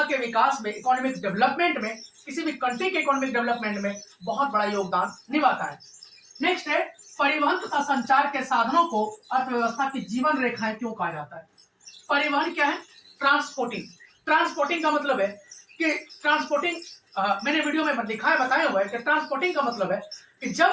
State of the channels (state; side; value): identical; both; correlation 1.00